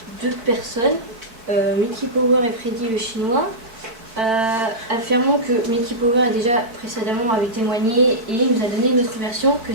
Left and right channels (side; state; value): left; late; 4.5 ms